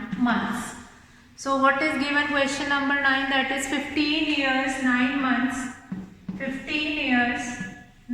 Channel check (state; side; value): identical; both; correlation 1.00